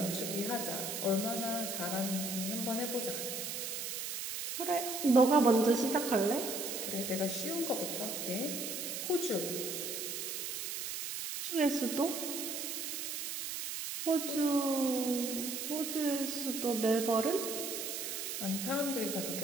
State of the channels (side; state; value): right; noise; hiss, 4 dB below the sound